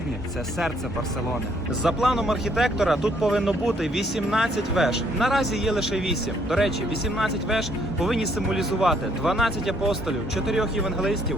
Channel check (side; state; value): both; normal; correlation 0.67